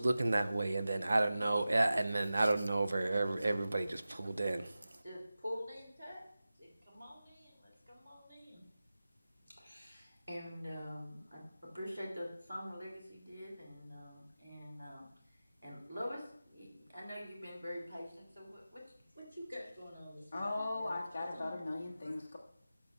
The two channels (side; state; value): both; inverted; correlation -0.95